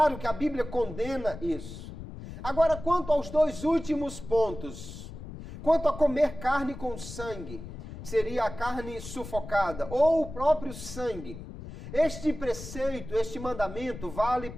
que a Bíblia condena isso. Agora, quanto aos 2 últimos pontos, quanto a comer carne com sangue, seria a carne sufocada, ou o próprio sangue, este preceito, este mandamento vale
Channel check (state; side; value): noise; left; rumble, 12 dB below the sound